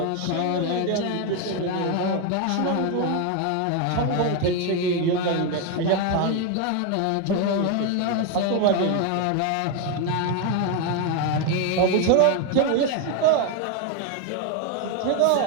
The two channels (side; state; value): both; different; correlation 0.01